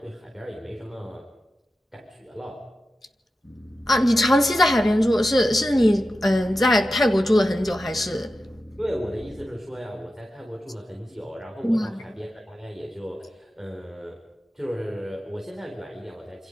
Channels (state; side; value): normal; both; correlation 0.92